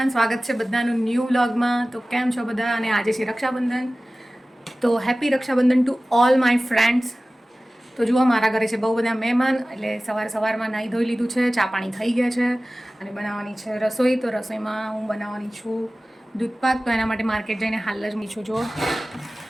સ્વાગત છે બધાનું ન્યૂ વ્લોગમાં. તો કેમ છો બધા? અને આજે છે રક્ષાબંધન, તો happy Rakshabandhan to all my friends. તો જુઓ, મારા ઘરે છે બહુ બધા મહેમાન, એટલે સવારમાં નાહી ધોઈ લીધું છે, ચા પાણી થઈ ગયા છે અને બનાવવાની છે રસોઈ. તો રસોઈમાં હું બનાવવાની છું દૂધપાક. તો એના માટે માર્કેટ જઈને હાલ જ મીઠું જુઓ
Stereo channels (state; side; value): normal; both; correlation 0.97